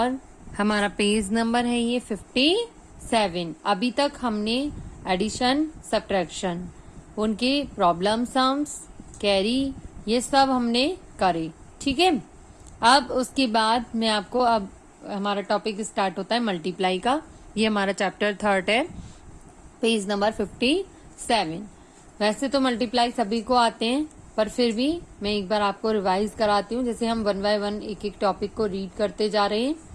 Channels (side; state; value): both; identical; correlation 1.00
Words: हमारा पेज नंबर है ये 57। अभी तक हमने एडिशन, सब्ट्रैक्शन, उनके प्रॉब्लम सम्स, कैरी, ये सब हमने करे। ठीक है। अब उसके बाद मैं आपको अब हमारा टॉपिक स्टार्ट होता है मल्टीप्लाई का। ये हमारा चैप्टर थर्ड है, पेज नंबर 57। वैसे तो मल्टीप्लाई सभी को आते हैं, पर फिर भी मैं एक बार आपको रिवाइज कराती हूँ। जैसे हम 1 बाय 1 एक एक टॉपिक को रीड करते जा रहे हैं,